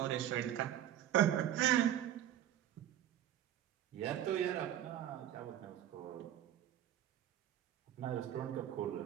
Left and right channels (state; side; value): quieter; left; 11.4 dB